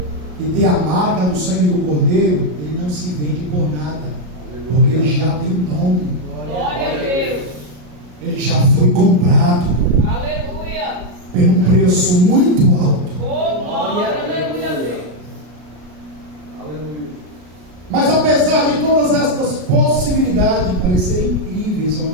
que tem a marca do sangue do Cordeiro, ele não se vende por nada, porque ele já tem nome. Glória a Deus. Ele já foi comprado. Aleluia. Por um preço muito alto. Oh, glória, aleluia a Deus. Aleluia. Mas apesar de todas estas possibilidades parecerem incríveis aos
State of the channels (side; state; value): left; late; 33 ms